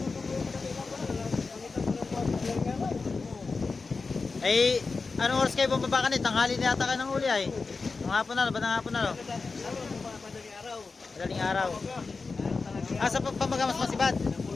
ay, anong oras kayo bumaba kanit? Tanghali na yata kayo ng huli ay. Ng hapon na, batang hapon na. Madaling araw. Sa pamagamas masibad.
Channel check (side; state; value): right; quieter; 4.3 dB